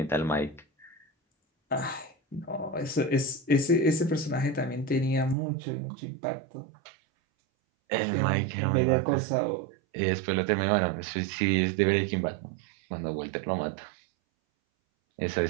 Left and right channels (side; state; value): left; drops out; at 5.4 s